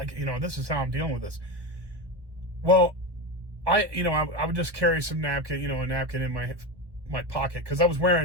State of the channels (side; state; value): left; late; 1.1 ms